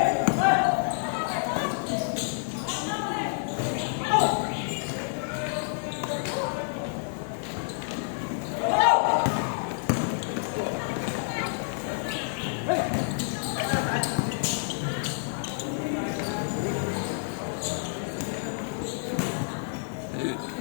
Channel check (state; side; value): silent; right; 59 dB below the other